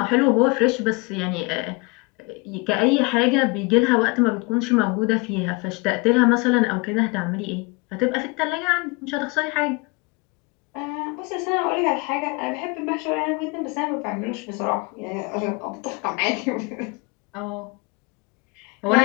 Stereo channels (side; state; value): right; quieter; 27.5 dB